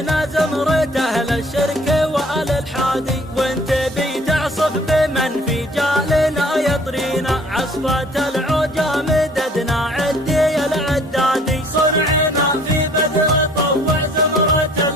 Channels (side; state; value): both; normal; correlation 0.55